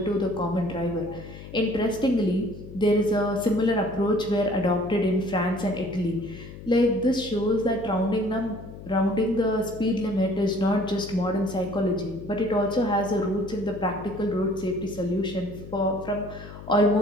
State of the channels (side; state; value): left; noise; hum, 14 dB below the sound